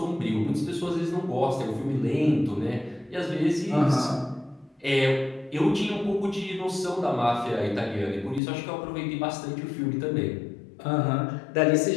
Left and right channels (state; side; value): drops out; right; at 8.4 s